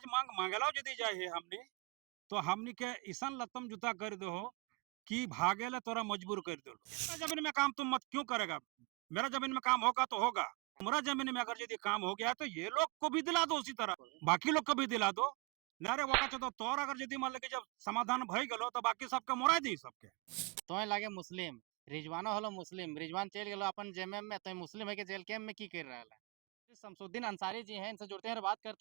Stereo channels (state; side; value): quieter; left; 25.9 dB